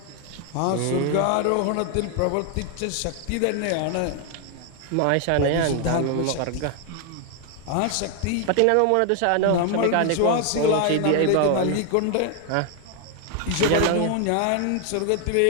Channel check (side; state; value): both; different; correlation 0.00